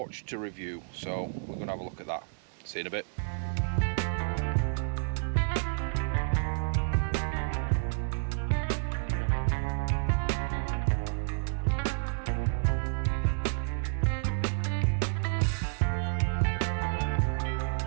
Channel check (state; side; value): silent; left; 58 dB below the other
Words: to review, so we're going to have a look at that. See you in a bit.